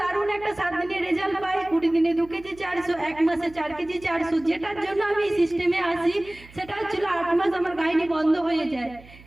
একটা 7 দিনের রেজাল্ট পাই, 20 দিনে 2 কেজি 400, 1 মাসে 4 কেজি 400। যেটার জন্য আমি এই সিস্টেমে আসি সেটা হচ্ছিল 8 মাস আমার গাইনি বন্ধ হয়ে যায়।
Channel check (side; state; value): right; noise; hum, 22 dB below the sound